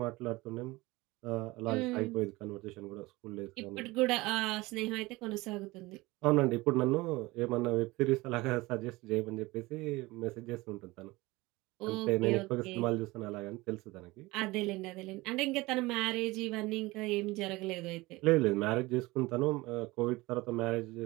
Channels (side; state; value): left; quieter; 21.3 dB